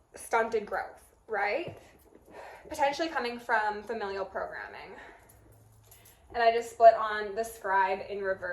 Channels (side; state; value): both; identical; correlation 1.00